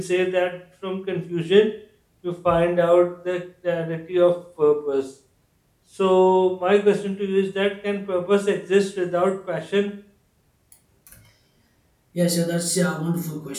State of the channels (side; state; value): both; identical; correlation 1.00